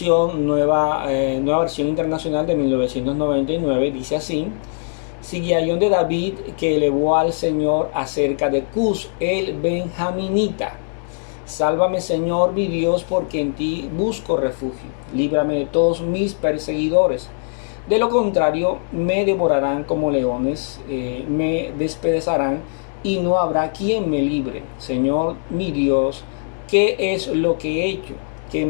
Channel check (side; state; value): right; silent; digital silence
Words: nueva versión internacional de 1999. Dice así: Sigayón de David, que elevó al Señor acerca de Cus, el benjaminita. Sálvame, Señor mi Dios, porque en ti busco refugio. Líbrame de todos mis perseguidores. De lo contrario, me devorarán como leones, me despedazarán, y no habrá quien me libre. Señor mi Dios, ¿qué es lo que he hecho? ¿Qué